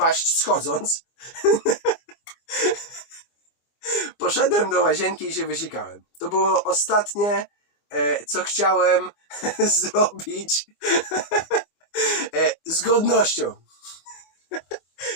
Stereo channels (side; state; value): right; late; 24 ms